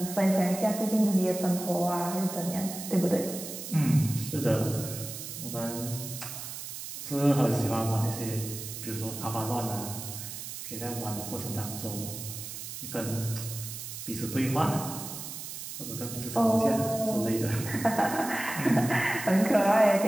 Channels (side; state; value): right; noise; hiss, 9 dB below the sound